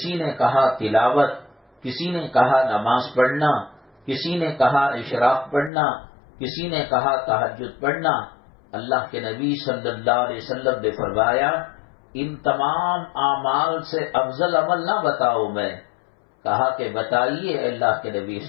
نے کہا تلاوت، کسی نے کہا نماز پڑھنا، کسی نے کہا اشراق پڑھنا، کسی نے کہا تہجد پڑھنا۔ اللہ کے نبی صلی اللہ علیہ وسلم نے فرمایا، ان تمام اعمال سے افضل عمل نہ بتاؤ میں؟ کہا کہ بتائیے اللہ کے نبی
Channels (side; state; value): right; drops out; at 5.7 s